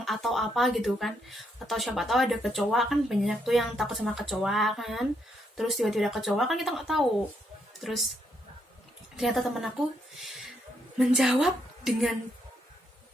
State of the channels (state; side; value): normal; both; correlation 0.76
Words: atau apa gitu kan, atau siapa tahu ada kecoa, kan banyak tuh yang takut sama kecoa kan, terus tiba-tiba ada kecoa kan kita nggak tahu. Terus ternyata teman aku menjawab